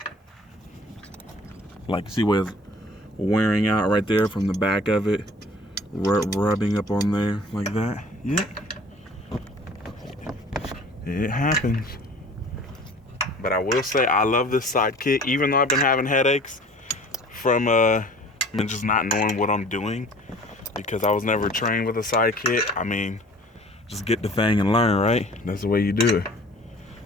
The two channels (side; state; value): both; normal; correlation 0.47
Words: Like, see where it's wearing out right there from the back of it, rubbing up on there like that. Yep. It happens. But I will say I love this Sidekit, even though I've been having headaches from just not knowing what I'm doing, because I was never trained with a Sidekit. I mean, just get the thing and learn, right? That's the way you do it.